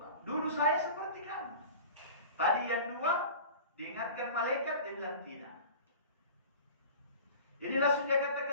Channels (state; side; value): inverted; both; correlation -0.39